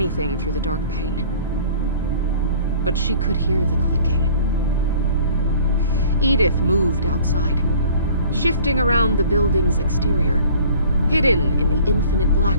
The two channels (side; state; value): both; inverted; correlation -0.49